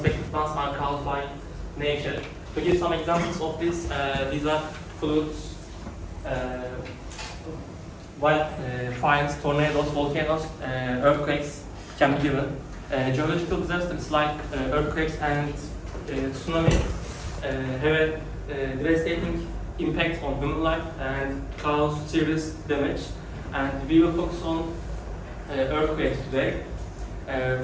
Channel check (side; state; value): both; identical; correlation 1.00